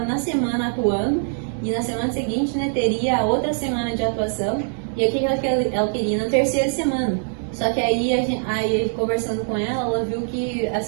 na semana atuando, e na semana seguinte, né, teria a outra semana de atuação, e aqui ela queria na 3ª semana. Só que aí conversando com ela viu que,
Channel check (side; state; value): left; silent; 64 dB below the other